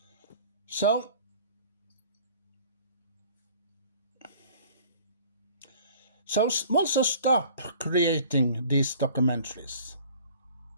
So also stop creating these documentaries.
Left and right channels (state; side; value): inverted; both; correlation -0.49